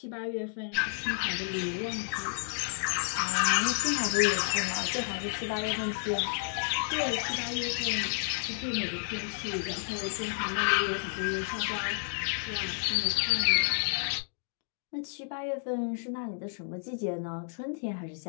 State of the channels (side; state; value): right; silent; digital silence